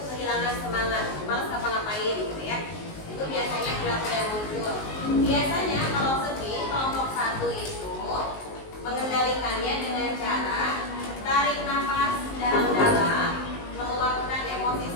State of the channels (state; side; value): late; right; 19 ms